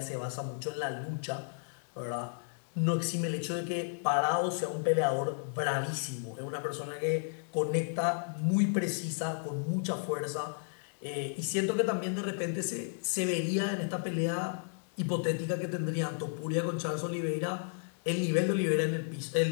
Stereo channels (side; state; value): right; silent; digital silence